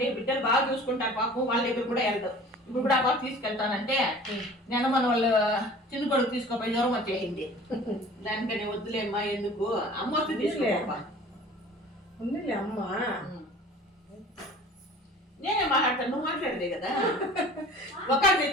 బిడ్డలు బాగా చూసుకుంటారు పాపం, వాళ్ళ దగ్గర కూడా వెళ్తారు. ఇప్పుడు కూడా బాగా తీసుకెళ్తానంటే నేను మన వాళ్ళు చిన్న కొడుకు తీసుకోపోయి జ్వరం వచ్చేసింది. దానికని వద్దులేమ్మా, ఎందుకు అమ్మ వస్తే తీసుకోపా. అమ్మ నేనే మాట్లాడతాను, నువ్వు మాట్లాడదే కదా. ఒక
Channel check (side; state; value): both; normal; correlation 0.45